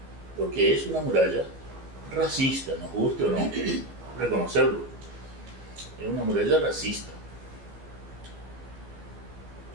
porque es una muralla racista, nos guste o no reconocerlo. Es una muralla racista.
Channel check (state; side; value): late; left; 14 ms